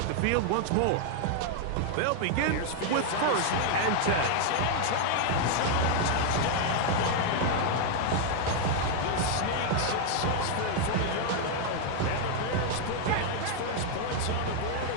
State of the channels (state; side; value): different; both; correlation 0.00